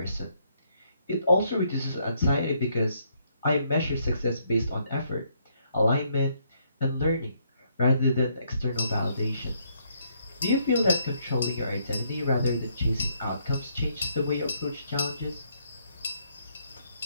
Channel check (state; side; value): inverted; both; correlation -0.72